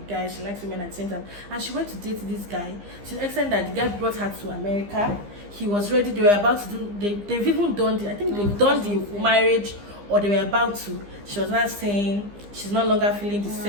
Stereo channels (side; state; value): left; late; 15 ms